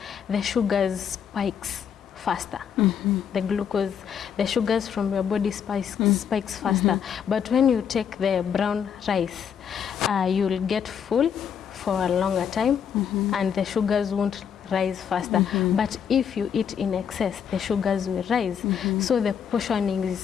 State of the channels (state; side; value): quieter; right; 7.9 dB